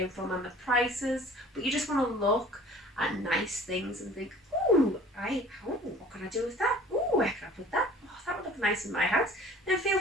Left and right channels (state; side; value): normal; both; correlation 0.49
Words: from and the prices, but you just want to look at nice things and think, ooh, what can I do with that? Ooh, where can I put that? Oh, that would look nice in my house. Then feel